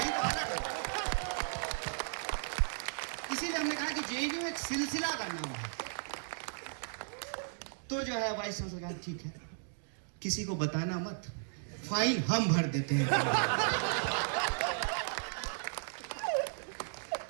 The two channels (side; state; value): left; silent; digital silence